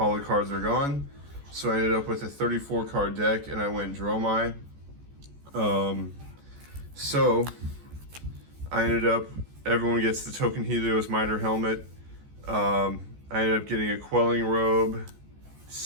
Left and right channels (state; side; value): late; left; 14 ms